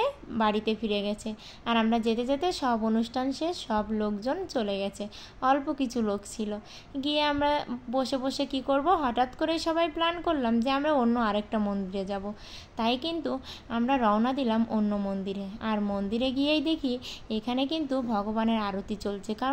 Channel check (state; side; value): identical; both; correlation 1.00